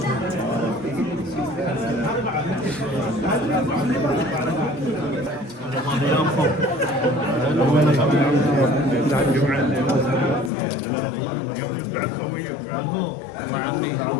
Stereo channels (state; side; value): drops out; right; at 10.5 s